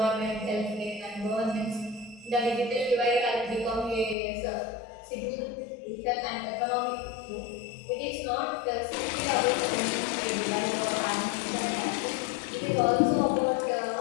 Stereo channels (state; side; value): drops out; right; at 4.2 s